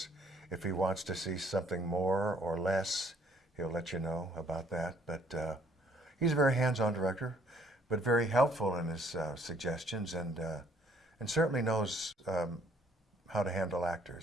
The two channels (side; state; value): both; normal; correlation 0.62